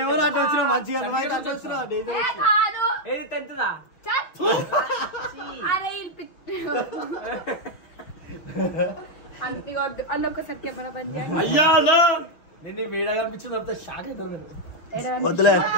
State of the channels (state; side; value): late; right; 5.9 ms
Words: అరే అంతిగొద్దు అన్న ఒకసారి కెమెరా బంద్ చేయండి. అయ్యా నేను వీడియో కనిపించింది అంత షాక్ అవుతారు నేను. వద్దులే